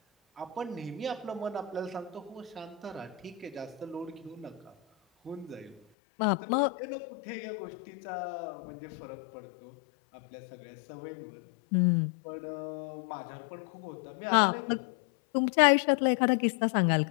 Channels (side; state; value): right; drops out; at 5.8 s